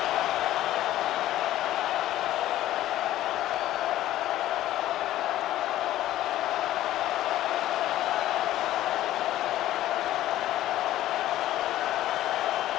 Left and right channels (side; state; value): right; quieter; 14.0 dB